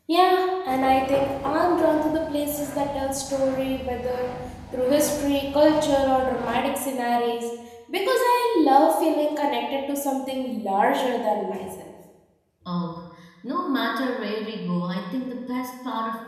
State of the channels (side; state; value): both; identical; correlation 1.00